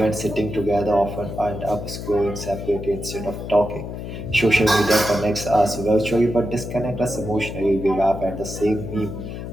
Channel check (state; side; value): noise; left; hum, 8 dB below the sound